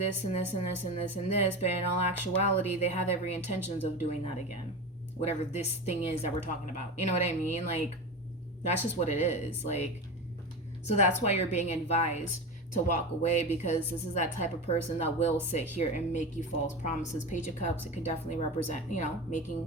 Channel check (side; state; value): both; normal; correlation 0.24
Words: and this and this and this and this. But in all actuality, they have every intentions of doing that again. Whatever this thing is that we're talking about. You know what I mean? Like, that's just what it is. Like, so that's why you're being advised to walk away, because this is that type of person that will sit here and make you false promises. Page of Cups, it can definitely represent, you know,